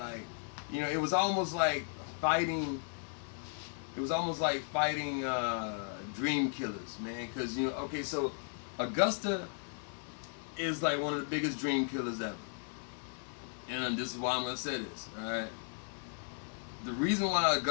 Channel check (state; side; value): silent; right; 54 dB below the other